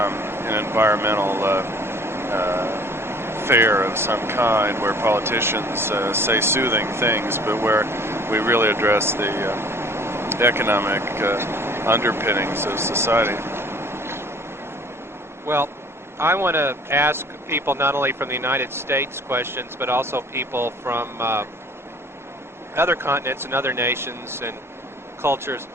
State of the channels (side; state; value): both; normal; correlation 0.52